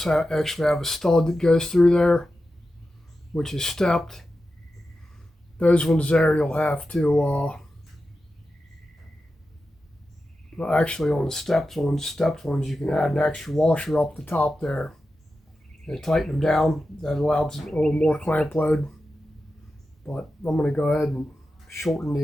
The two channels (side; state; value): both; normal; correlation 0.91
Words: actually have a stud that goes through there, which is stepped. Those ones there you'll have to actually on the stepped ones you can add an extra washer up the top there and tighten them down. That allows a little more clamp load. But I'm going to go ahead and shorten